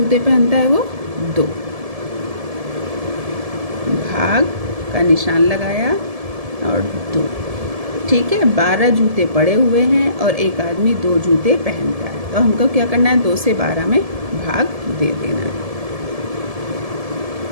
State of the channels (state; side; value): late; left; 1.7 ms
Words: पहनता है वो? 2। भाग का निशान लगाया और 2। ठीक है, 12 जूते पड़े हुए हैं और एक आदमी 2 जूते पहनता है, तो हमको क्या करना है? 2 से 12 में भाग दे देना है।